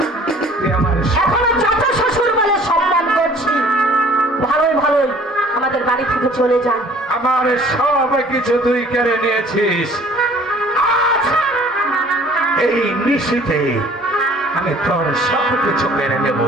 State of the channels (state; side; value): normal; both; correlation 0.52